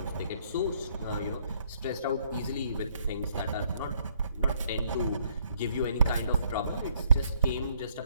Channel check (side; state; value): both; inverted; correlation -0.68